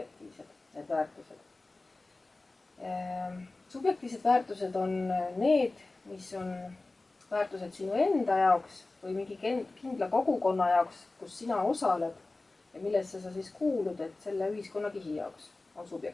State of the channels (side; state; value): right; quieter; 3.2 dB